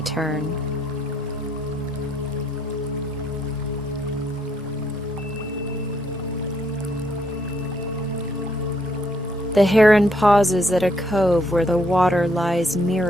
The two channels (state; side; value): normal; both; correlation 0.71